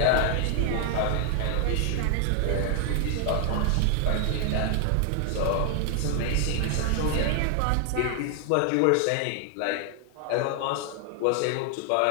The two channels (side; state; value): both; different; correlation 0.00